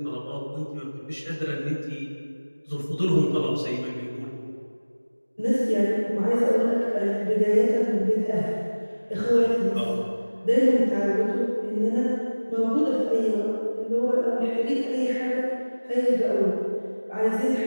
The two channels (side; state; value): both; inverted; correlation -1.00